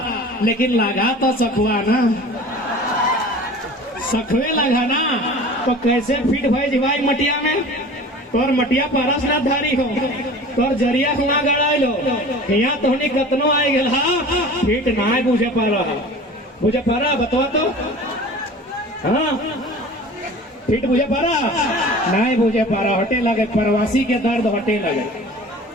लेकिन लगा तो सखुआ ना, सखुए लगा ना, तो कैसे फिट भाई भाई मटिया में, तोर मटिया पारस ना धारी हो, तोर जरिया हुआ गड़ा लो, यहाँ तो कतनो आए गेल, फिट ना बुझे पा रहा, बुझे पा रहा बतवा तो, हाँ फिट बुझे पा रहा? नहीं बुझे पा रहा, हटे लगे, प्रवासी के दर्द हटे लगे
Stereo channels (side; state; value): both; normal; correlation 0.41